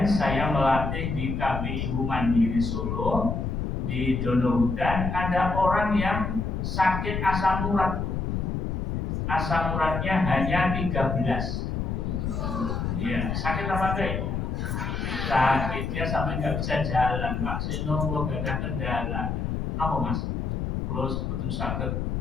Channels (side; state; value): left; noise; rumble, 2 dB below the sound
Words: saya melatih di KBIU Mandiri Solo, di Donohudan, ada orang yang sakit asam urat. Asam uratnya hanya 13. Iya, sakit apa enggak itu? Sakit, dia sampai nggak bisa jalan. Pak Seno, kalau gak ada kendala. Apa mas? Kalau sebetulnya sakit,